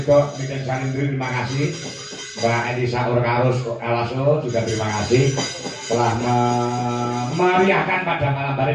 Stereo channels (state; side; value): identical; both; correlation 1.00